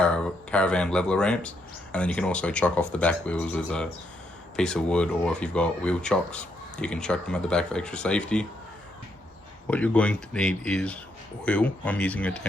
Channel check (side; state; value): both; normal; correlation 0.77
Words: leveler ramps, and then you can also chuck off the back wheels with a piece of wood, or if you've got wheel chocks you can chuck them at the back for extra safety. What you're going to need is oil. I'm using a